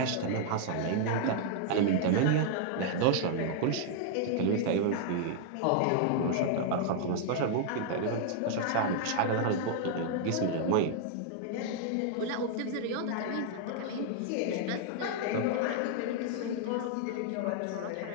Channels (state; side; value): different; both; correlation 0.00